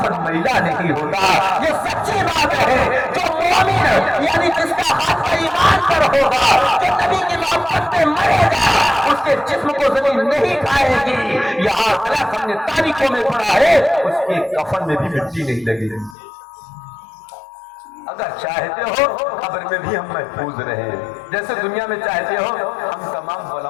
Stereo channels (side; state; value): right; drops out; at 16.2 s